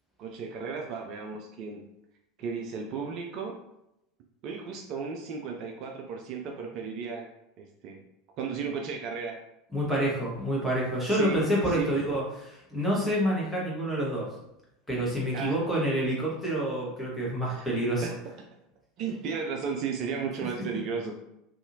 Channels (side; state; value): both; normal; correlation 0.34